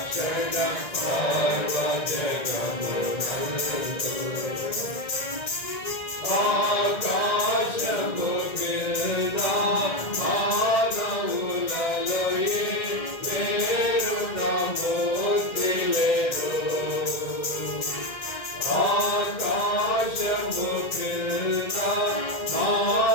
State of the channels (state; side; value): late; right; 1.9 ms